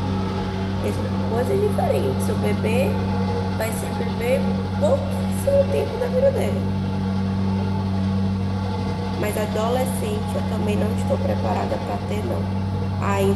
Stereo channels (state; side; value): identical; both; correlation 1.00